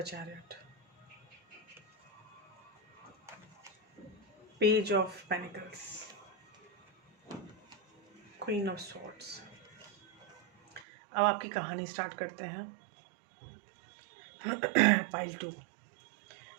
chariot, page of pentacles, queen of swords. अब आपकी कहानी स्टार्ट करते हैं.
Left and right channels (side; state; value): left; drops out; at 10.9 s